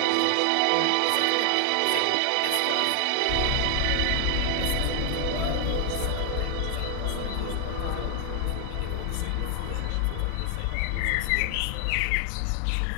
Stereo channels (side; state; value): both; different; correlation 0.00